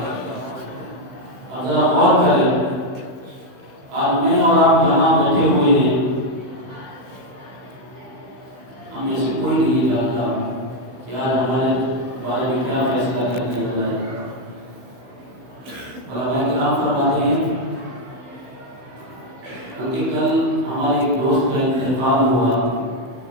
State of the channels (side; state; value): left; late; 16 ms